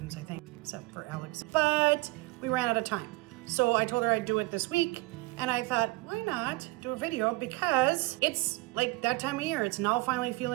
I think, except for Alex. But we ran out of time. So I told her I'd do it this week. And I thought, why not do a video? Because it's like that time of year. It's now finally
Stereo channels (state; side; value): quieter; left; 22.7 dB